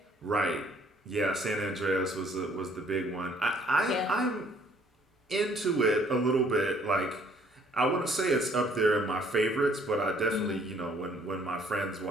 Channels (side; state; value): both; normal; correlation 0.61